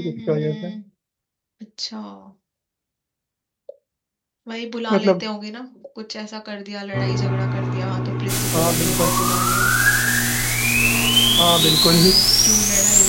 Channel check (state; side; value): identical; both; correlation 1.00